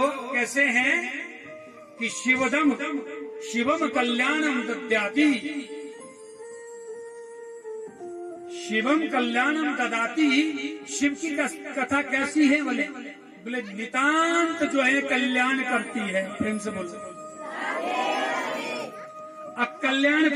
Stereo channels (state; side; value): identical; both; correlation 1.00